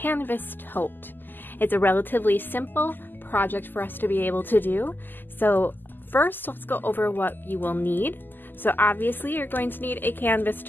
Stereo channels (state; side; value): late; right; 0.091 ms